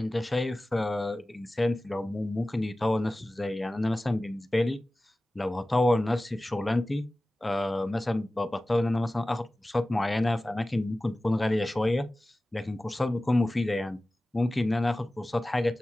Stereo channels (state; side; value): normal; both; correlation 0.97